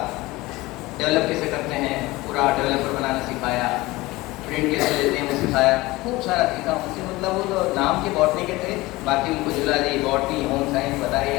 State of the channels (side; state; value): right; quieter; 20.3 dB